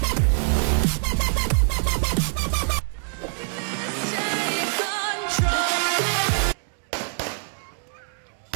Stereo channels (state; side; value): silent; left; 62 dB below the other